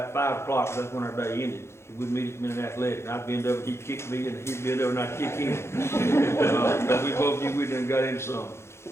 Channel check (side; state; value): right; late; 0.13 ms